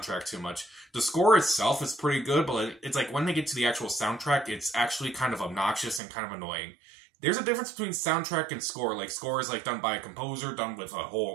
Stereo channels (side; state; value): left; drops out; at 6.0 s